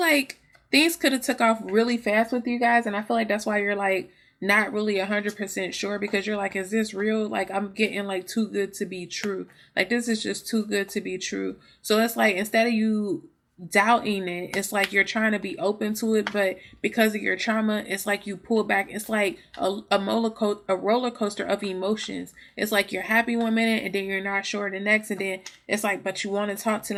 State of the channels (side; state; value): both; identical; correlation 1.00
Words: things could have took off really fast with you guys. And I feel like that's why you're like not really 100% sure, because you're like, is this real? Like, I'm getting like too good to be true. Like, this is just too good to be true. So it's like, instead of you doubting it, it's like you're trying to be open to it, but because of your trauma, it's like you pull back. It's like a roller coaster of emotions. It's like you're happy one minute and then you're not sure the next, and then it's like, but you want to talk to